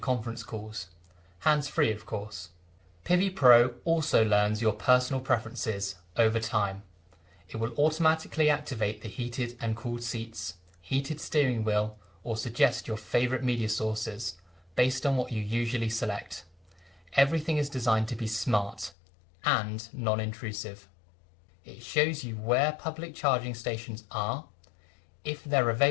calls. Hands-free, of course. PHEV Pro also learns your personal preferences over time. It will automatically activate the heated and cooled seats, heated steering wheel, or suggest your favourite media sources based on what you usually select. Everything is designed to be smart and non-intrusive. It shows you where public charging stations are, if they're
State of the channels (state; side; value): drops out; right; at 18.9 s